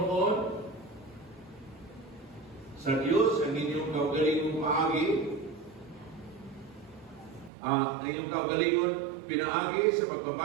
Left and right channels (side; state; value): left; drops out; at 7.5 s